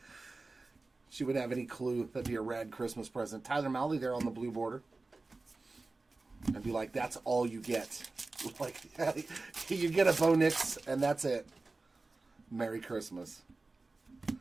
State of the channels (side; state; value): left; quieter; 3.5 dB